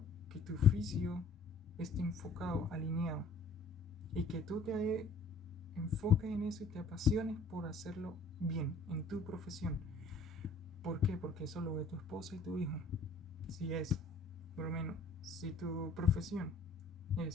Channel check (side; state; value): right; quieter; 3.6 dB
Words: que tu oficio esté enfocado, alineado, y que tú te enfoques en eso y te apasiones por hacerlo bien en tu profesión. ¿Por qué? Porque eso lo ve tu esposa y tu hijo. Si es, por lo menos, si tu profesión